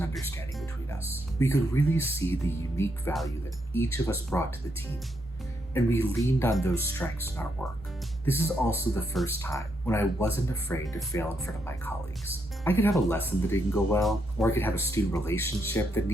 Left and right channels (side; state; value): both; normal; correlation 0.79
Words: understanding between us. We could really see the unique value that each of us brought to the team, and we leaned on those strengths in our work. This is also the first time when I wasn't afraid to fail in front of my colleagues. I could have a lesson that didn't go well, or I could have a student relationship that